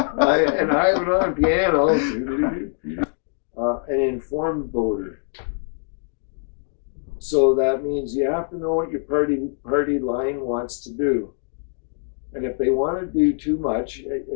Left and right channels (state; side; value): silent; right; digital silence